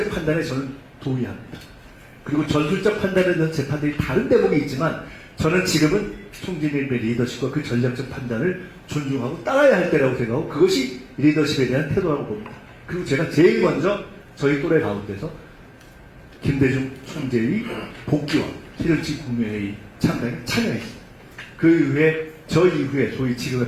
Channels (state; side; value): identical; both; correlation 1.00